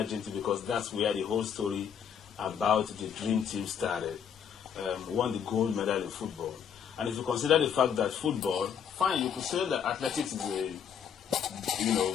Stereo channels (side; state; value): right; quieter; 8.0 dB